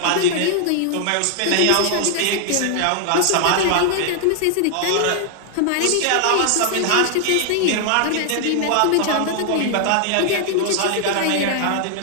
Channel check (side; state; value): both; different; correlation 0.00